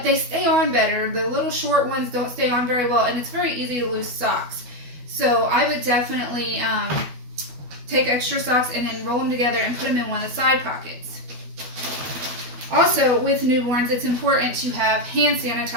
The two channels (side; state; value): left; late; 12 ms